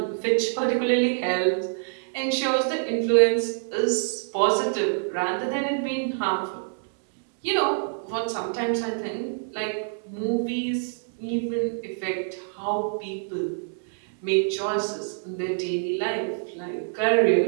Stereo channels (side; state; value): left; silent; digital silence